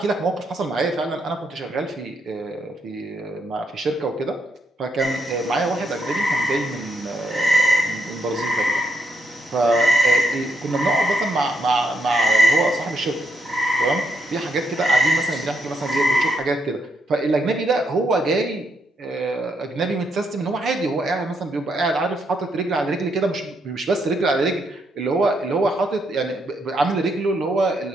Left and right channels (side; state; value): both; normal; correlation 0.77